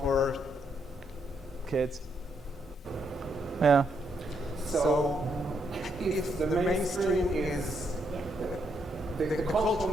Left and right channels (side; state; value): both; normal; correlation 0.76